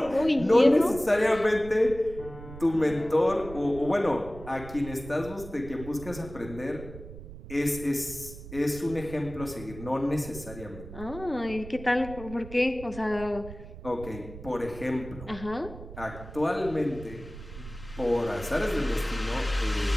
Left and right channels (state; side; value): noise; right; rumble, 13 dB below the sound